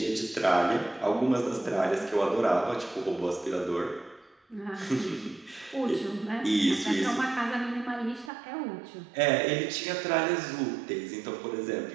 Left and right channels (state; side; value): drops out; left; at 8.3 s